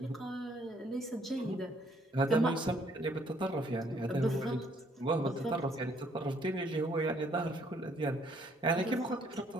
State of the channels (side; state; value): both; normal; correlation 0.66